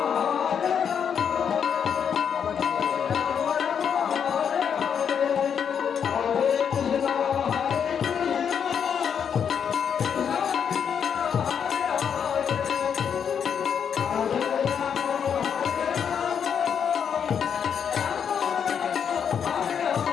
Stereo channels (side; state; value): right; quieter; 7.6 dB